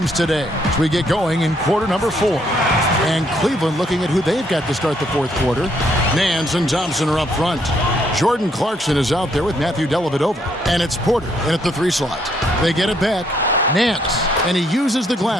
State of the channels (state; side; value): normal; both; correlation 0.71